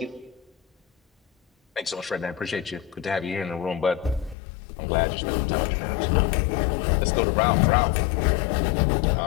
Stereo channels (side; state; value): right; drops out; at 4.4 s